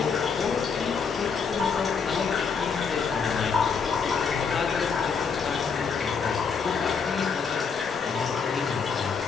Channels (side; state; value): right; quieter; 5.8 dB